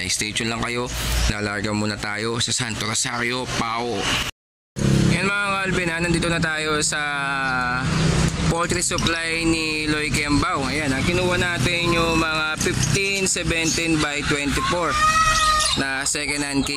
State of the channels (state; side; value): identical; both; correlation 1.00